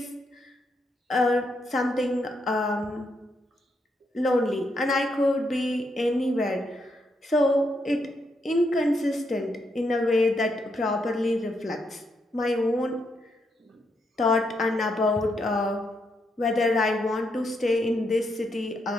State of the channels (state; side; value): normal; both; correlation 0.79